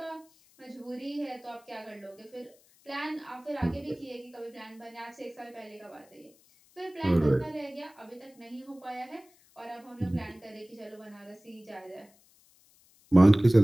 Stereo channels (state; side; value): noise; left; hiss, 30 dB below the sound